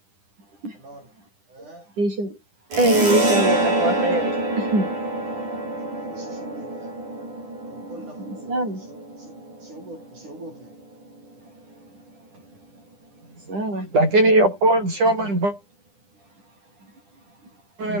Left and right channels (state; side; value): late; left; 10 ms